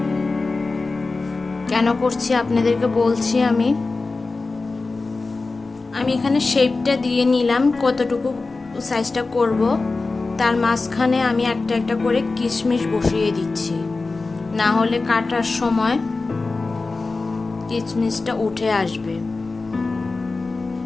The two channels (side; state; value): right; quieter; 3.7 dB